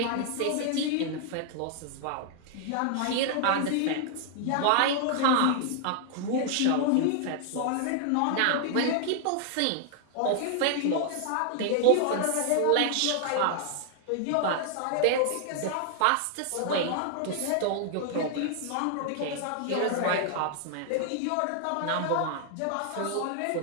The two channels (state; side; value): different; both; correlation 0.00